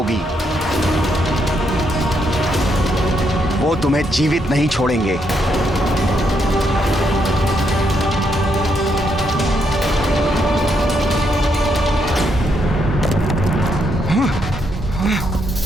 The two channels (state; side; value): normal; both; correlation 0.77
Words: वो तुम्हें जीवित नहीं छोड़ेंगे।